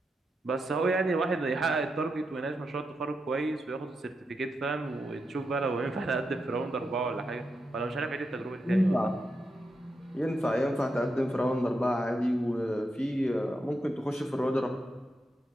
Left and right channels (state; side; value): normal; both; correlation 0.85